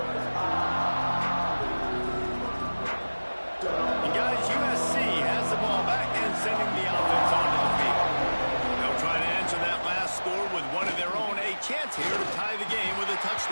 And guys, USC has the ball back and sending the offense onto the field. They'll try to answer that last score with one of their own. A chance here to tie the game with a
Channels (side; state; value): both; inverted; correlation -1.00